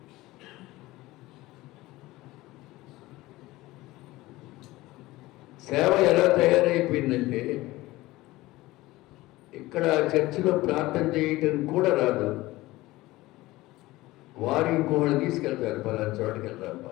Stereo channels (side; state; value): right; quieter; 18.7 dB